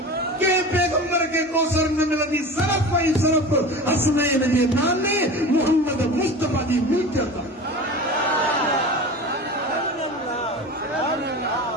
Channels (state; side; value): normal; both; correlation 0.33